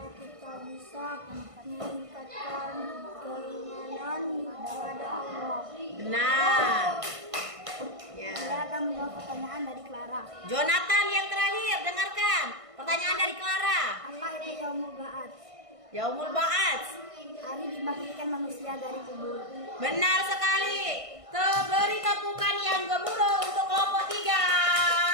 kita bisa meningkatkan keimanan kepada Allah. Benar. Ya. Saya akan menjawab pertanyaan dari Clara. Jonathan yang terakhir, dengarkan pertanyaan dari Clara. Apa itu Yaumul Ba'ats? Yaumul Ba'ats. Hari dibangkitkan manusia dari kubur. Benar sekali. Beri tepukan yang gemuruh untuk kelompok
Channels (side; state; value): left; late; 1.5 ms